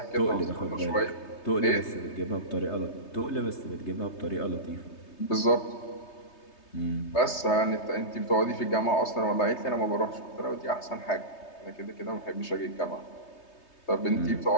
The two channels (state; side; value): late; right; 3.3 ms